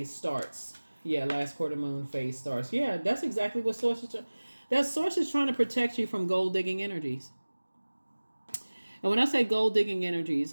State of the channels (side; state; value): both; inverted; correlation -1.00